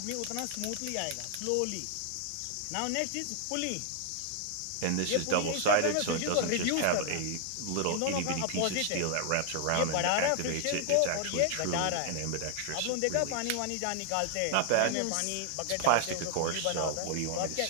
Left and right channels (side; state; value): both; different; correlation 0.00